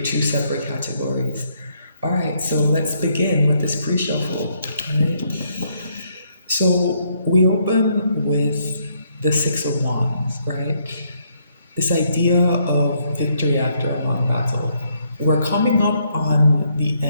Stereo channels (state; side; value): inverted; both; correlation -0.72